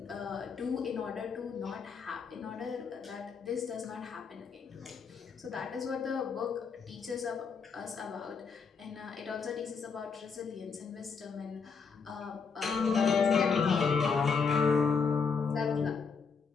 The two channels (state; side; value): quieter; right; 5.5 dB